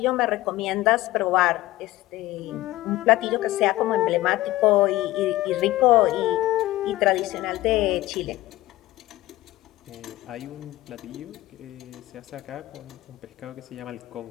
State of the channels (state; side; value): quieter; right; 17.1 dB